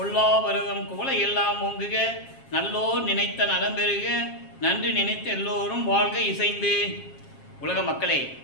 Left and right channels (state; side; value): late; right; 7.4 ms